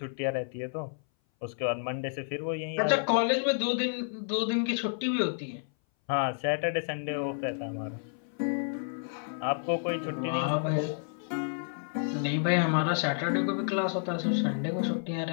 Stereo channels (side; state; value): right; silent; 57 dB below the other